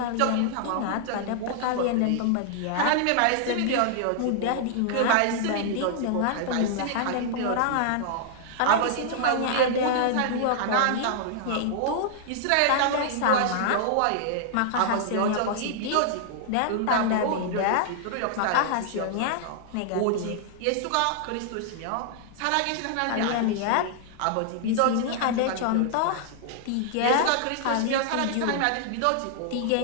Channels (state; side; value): different; both; correlation -0.01